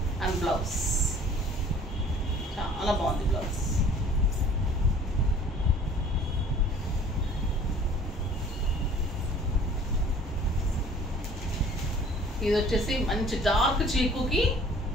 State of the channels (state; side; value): normal; both; correlation 0.51